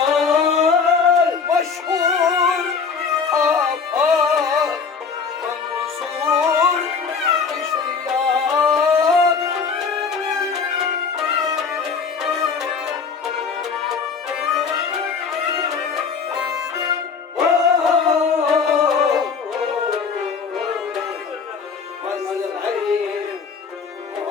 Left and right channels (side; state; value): right; quieter; 5.6 dB